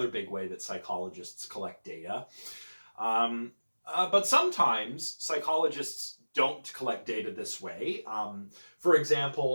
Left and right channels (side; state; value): both; inverted; correlation -1.00